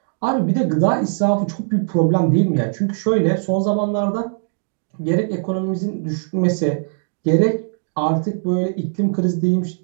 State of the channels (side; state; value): left; silent; digital silence